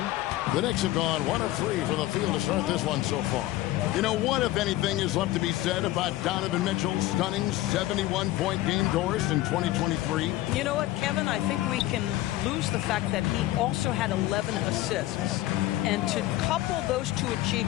The Knicks have gone 1 of 3 from the field to start this one so far. You know what, if anything, is left to be said about Donovan Mitchell's stunning 71-point game, Doris, in 2023? You know what, Kevin? I think we can lose the fact that he also had 11 assists. And to couple those two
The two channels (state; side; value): quieter; right; 16.0 dB